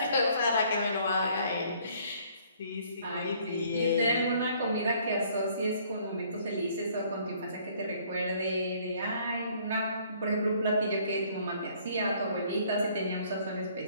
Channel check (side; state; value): both; inverted; correlation -0.60